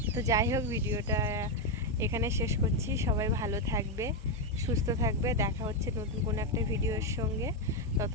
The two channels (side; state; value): both; normal; correlation 0.04